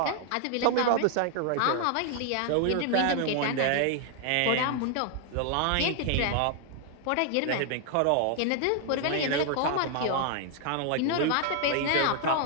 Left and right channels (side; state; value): both; different; correlation 0.00